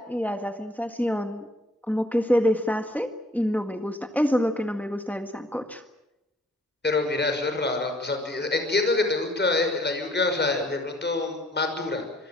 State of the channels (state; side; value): normal; both; correlation 0.61